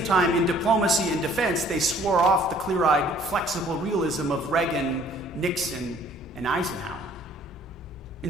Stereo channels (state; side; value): normal; both; correlation 0.57